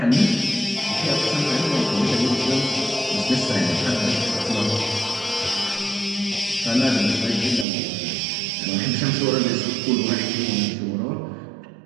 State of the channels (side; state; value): left; drops out; at 7.7 s